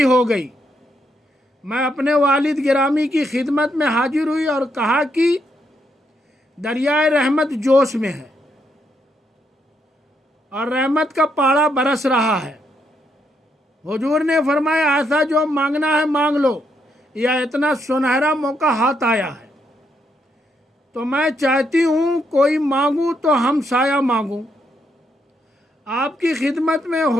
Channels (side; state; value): both; normal; correlation 0.77